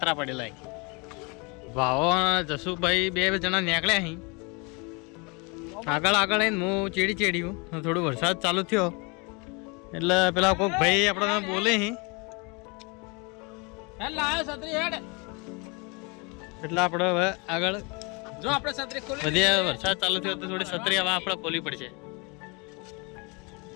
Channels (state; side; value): quieter; right; 30.1 dB